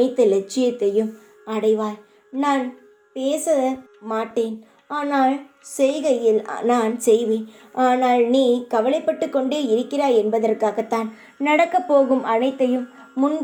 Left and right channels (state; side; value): identical; both; correlation 1.00